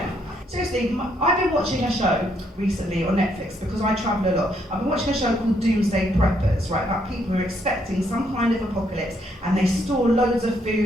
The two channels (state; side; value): normal; both; correlation 0.73